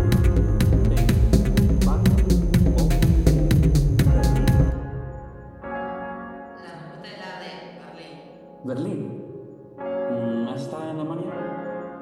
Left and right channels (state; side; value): identical; both; correlation 1.00